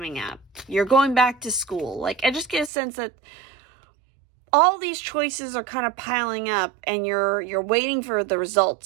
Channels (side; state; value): left; drops out; at 2.7 s